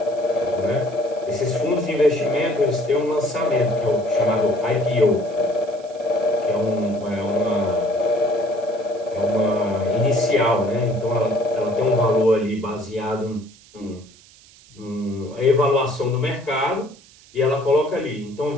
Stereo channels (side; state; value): right; noise; hiss, 25 dB below the sound